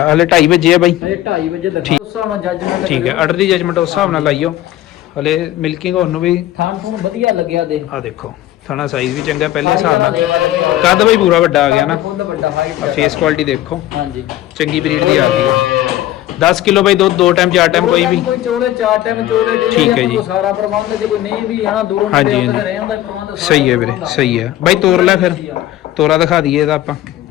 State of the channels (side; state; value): right; quieter; 14.2 dB